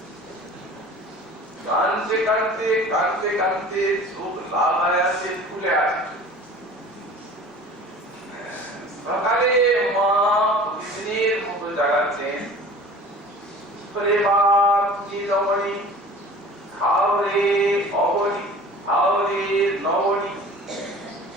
কাঁদতে কাঁদতে কাঁদতে কাঁদতে চোখ লাল হয়ে আছে ফুলে আছে সকালে মা প্রতিদিনের মতো জাগাচ্ছেন করে বাপ রমণী খাও রে অবনী খাও রে নবনী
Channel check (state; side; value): normal; both; correlation 0.43